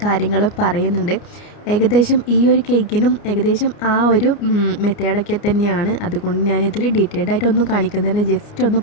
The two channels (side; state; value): right; late; 29 ms